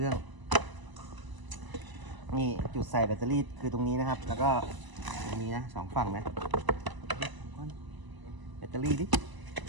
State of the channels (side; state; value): left; late; 1.0 ms